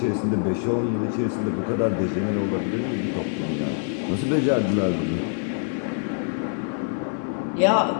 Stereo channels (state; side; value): silent; right; 57 dB below the other